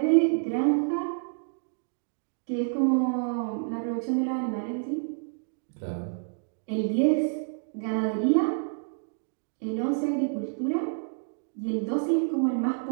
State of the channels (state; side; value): silent; left; digital silence